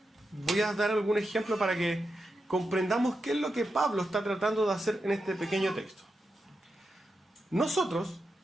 voy a dar algún ejemplo para que comprendamos qué es lo que Pablo está tratando de hacer en este pequeño texto. Nosotros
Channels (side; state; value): both; normal; correlation 0.88